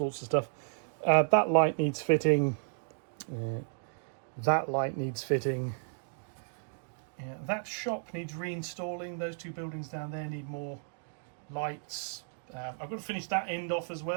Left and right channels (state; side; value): silent; left; digital silence